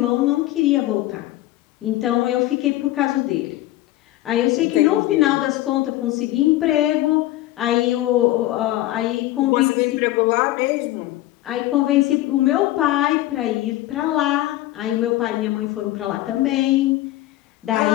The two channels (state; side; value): quieter; right; 15.9 dB